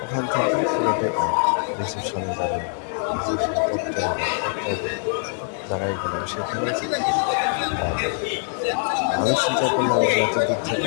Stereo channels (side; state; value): right; silent; 57 dB below the other